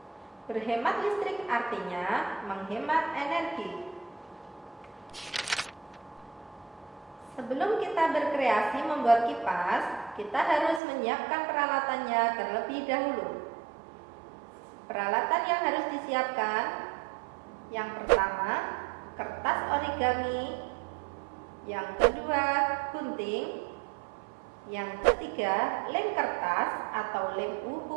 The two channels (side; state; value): left; drops out; at 10.8 s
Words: Berhemat listrik artinya menghemat energi. Sebelum kita berkreasi membuat kipas, kita harus menyiapkan peralatannya terlebih dahulu. Peralatan yang harus disiapkan: yang pertama, kertas origami, yang kedua gunting, yang ketiga lem kertas atau lem